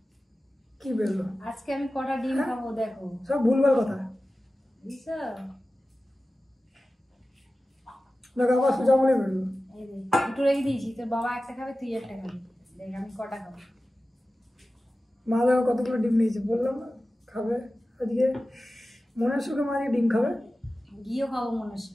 কি বেরোলো। আজকে আমি কটা ডিম খাবো দেখো, সব ভুলভাল কথা। দেখো আবার সোজা আঙুলে বেরোলো। দুটো রেখে দিয়েছি, তোর বাবা একটা খাবে, তুই একটা খাবি। দেখ আমি কটা খাবো। মা দেখো কতগুলো ডিম নিয়েছে, বললাম না খাবে আজকে। মনের সুখে মা আজকে ডিম খাবে, ঘিও খাবো মনের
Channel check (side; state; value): both; normal; correlation 0.95